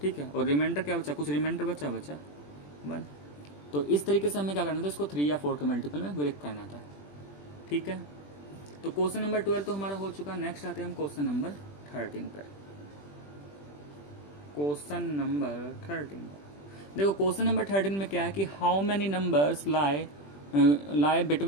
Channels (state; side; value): late; right; 20 ms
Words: ठीक है। और रिमाइंडर क्या बचा, कुछ रिमाइंडर बचा 1। तो इस तरीके से हमें क्या करना था, इसको 3 या 4 के मल्टीपल में ब्रेक करना था, ठीक है। तो क्वेश्चन नंबर 12 तो हमारा हो चुका। नेक्स्ट आते हैं हम क्वेश्चन नंबर 13 पर। क्वेश्चन नंबर 13, देखो क्वेश्चन नंबर 13 में क्या है कि how many numbers lie